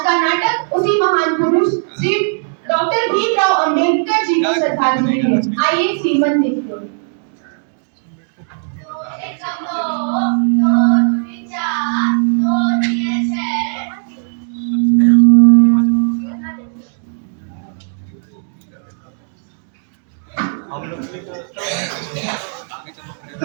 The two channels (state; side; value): silent; left; 68 dB below the other